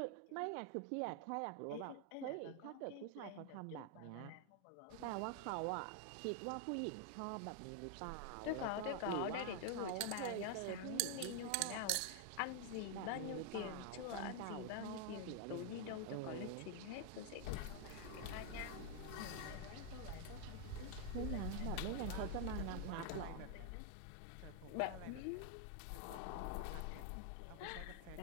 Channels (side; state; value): both; different; correlation 0.00